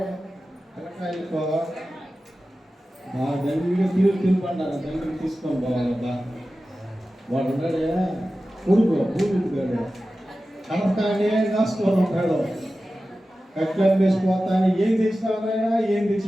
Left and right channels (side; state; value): both; normal; correlation 0.94